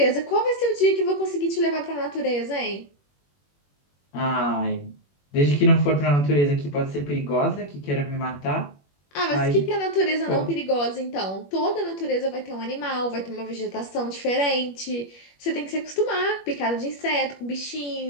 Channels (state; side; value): late; right; 21 ms